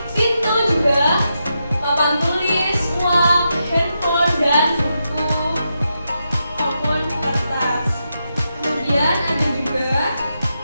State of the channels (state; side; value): inverted; both; correlation -0.85